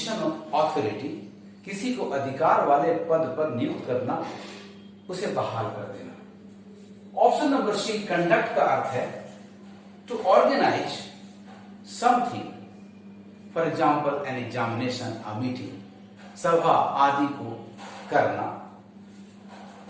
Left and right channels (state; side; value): identical; both; correlation 1.00